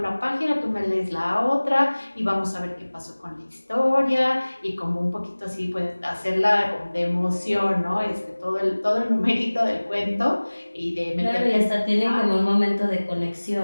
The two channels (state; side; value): inverted; both; correlation -1.00